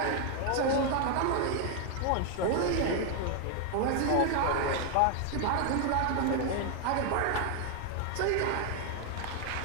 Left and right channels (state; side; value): different; both; correlation 0.00